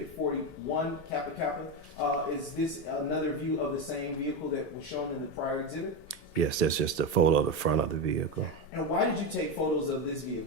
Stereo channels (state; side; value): normal; both; correlation 0.14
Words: 41 Kappa Kappa. Is this another view of the same vehicle that was shown in the prior exhibit? Yes, that's just a photo of the front of the vehicle. And why did you take photos of this